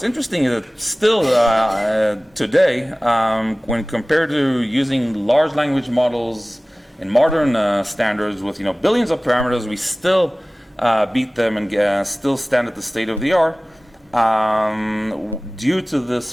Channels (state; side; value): normal; both; correlation 0.98